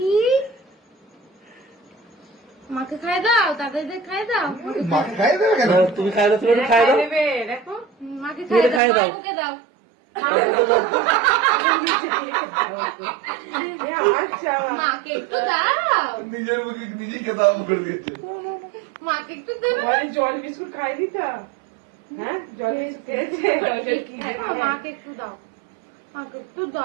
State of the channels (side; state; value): left; drops out; at 8.8 s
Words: মাকে খাই দাও, দাদাদের খাই দাও। মাকে খাইয়ে দেবে কেন? তুমি খাই দাও, তুমি একটু খাই দাও। দেখো মাকে তুমি খাই খাইয়ে দাও, দাও। মাকে দাও। মাকে একটু দাও, নিজের মুখে নিজেই খেতে আরম্ভ করে দিয়েছে। মাকে একটু দেবে। জল বিস্কুট খাই দিতা? হ্যাঁ, জল বিস্কুট খেয়েছে। মাকে একটু দাও, মাকে একটু